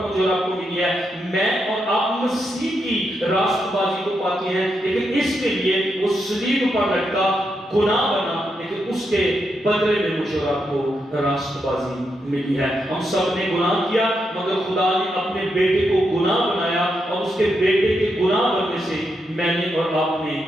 مجھے اور آپ کو ملی ہے۔ میں اور آپ مسیح کی راست بازی کو پاتے ہیں، لیکن اس کے لیے وہ صلیب پر لٹکا، گناہ بنا، لیکن اس کے بدلے میں مجھے اور آپ کو راست بازی ملی ہے۔ ہم سب نے گناہ کیا، مگر خدا نے اپنے بیٹے کو گناہ بنایا، اور اس کے بیٹے کے گناہ بننے سے میں نے اور آپ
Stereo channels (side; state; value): both; normal; correlation 0.83